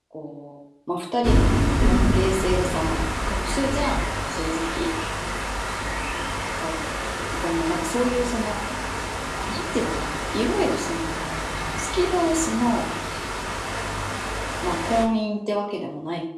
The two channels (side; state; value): both; identical; correlation 1.00